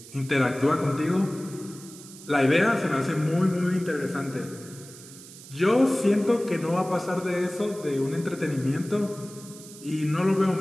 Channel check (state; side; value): noise; right; hiss, 18 dB below the sound